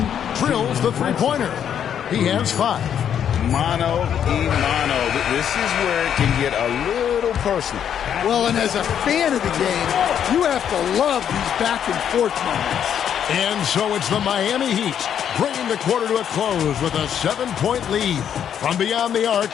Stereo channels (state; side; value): quieter; right; 9.0 dB